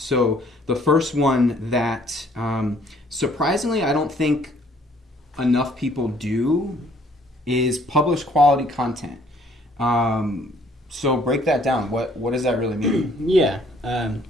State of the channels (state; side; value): normal; both; correlation 0.61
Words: the first one that surprisingly I don't think enough people do is publish quality content. So break that down. What does that really mean? Yeah.